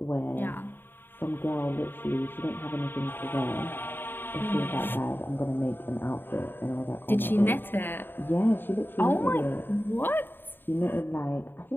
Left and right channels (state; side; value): late; right; 0.097 ms